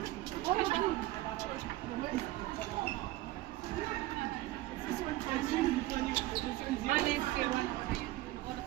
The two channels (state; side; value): quieter; left; 17.3 dB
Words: Malis kay Juan. Oras